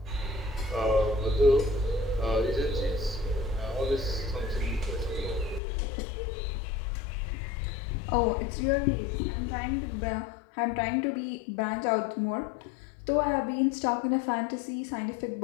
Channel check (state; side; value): drops out; right; at 5.6 s